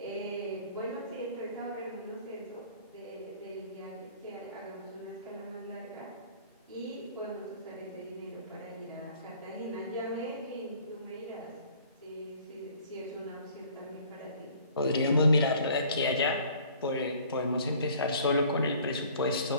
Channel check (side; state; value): both; inverted; correlation -0.52